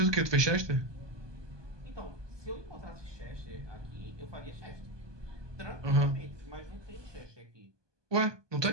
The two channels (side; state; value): left; late; 1.2 ms